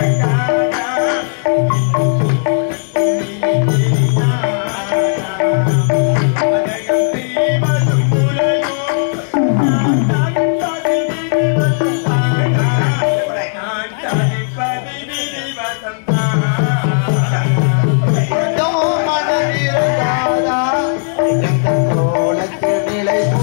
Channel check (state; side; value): silent; right; digital silence